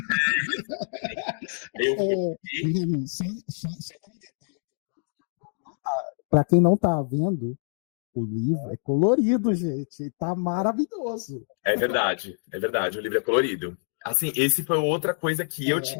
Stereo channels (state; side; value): silent; right; digital silence